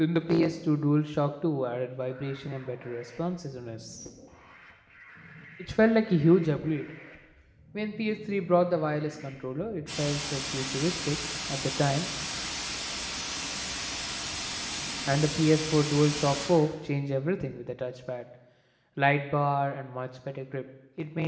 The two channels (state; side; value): identical; both; correlation 1.00